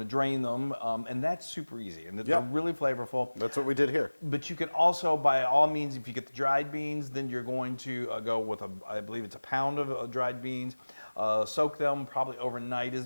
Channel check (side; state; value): both; inverted; correlation -1.00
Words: to drain them, and that's super easy, and they're really flavorful. That's what we did here. But you can also, by all means, if you get the dried beans, then you're going to go with I believe it's a pound of dried beans. Soak them probably overnight is